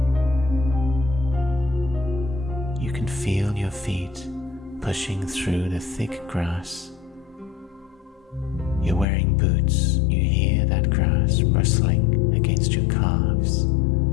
You can feel your feet pushing through the thick grass. You're wearing boots. You hear that grass rustling against your calves.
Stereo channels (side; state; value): right; drops out; at 9.1 s